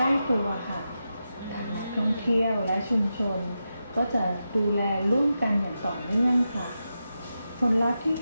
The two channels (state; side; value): inverted; both; correlation -0.89